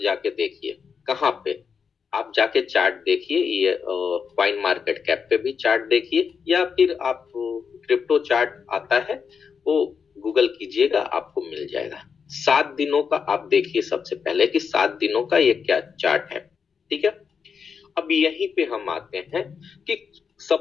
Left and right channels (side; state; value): right; quieter; 6.2 dB